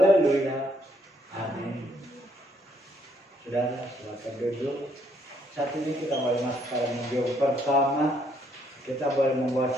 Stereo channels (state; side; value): normal; both; correlation 0.69